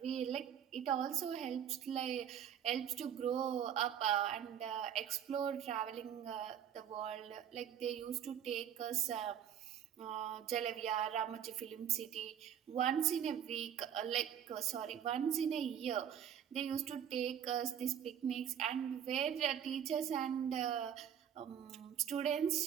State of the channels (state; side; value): quieter; left; 9.2 dB